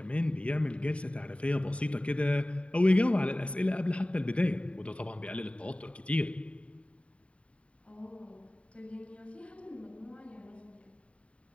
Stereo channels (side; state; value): right; late; 0.062 ms